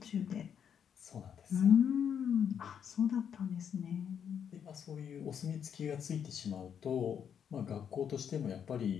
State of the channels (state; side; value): quieter; right; 8.1 dB